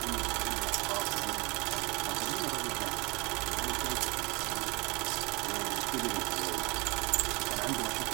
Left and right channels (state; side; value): quieter; left; 26.6 dB